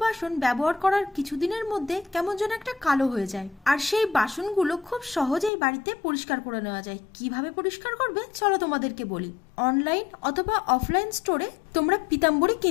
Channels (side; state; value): right; drops out; at 5.5 s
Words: বাসন ব্যবহার করার কিছুদিনের মধ্যে কেমন যেন একটা কালো হয়ে যায়। আর সেই বাসনগুলো খুব সহজেই বাড়িতে পরিষ্কার করে নেওয়া যায়। কিভাবে পরিষ্কার করবে চলো তোমাদেরকে বলি। অনলাইন অথবা অফলাইন স্টোরে তোমরা পিতাম্বরী